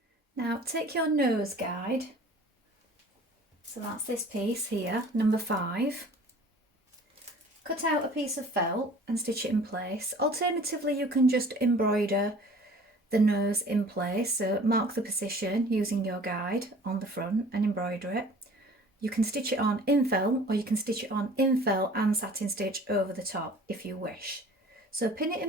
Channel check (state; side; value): normal; both; correlation 0.48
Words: Now take your nose guide. So that's this piece here, number 5. Cut out a piece of felt and stitch it in place. Alternatively, you can just embroider the nose in place. So mark the position using your guide on the front and embroider it. You can stitch it on in felt, or you can stitch it on in felt and satin stitch over the top if you wish. So pin it